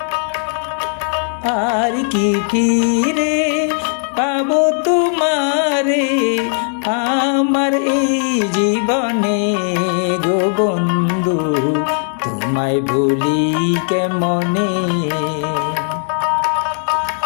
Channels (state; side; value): silent; right; digital silence